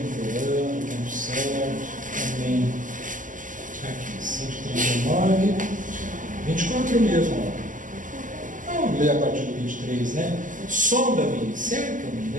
tempo certo. Amém. Aqui, 139, 24 mesmo. Vamos ler a partir do 23, né? Sonda-me, cerca-me,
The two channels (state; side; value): late; left; 0.38 ms